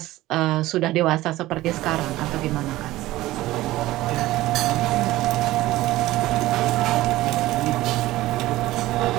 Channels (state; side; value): quieter; left; 16.9 dB